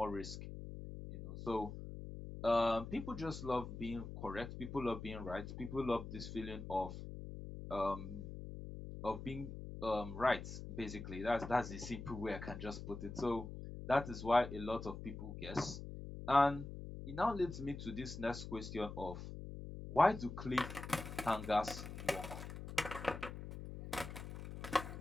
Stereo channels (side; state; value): left; noise; hum, 9 dB below the sound